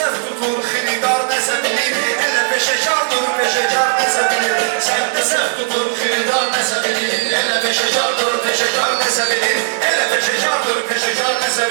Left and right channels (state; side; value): silent; left; digital silence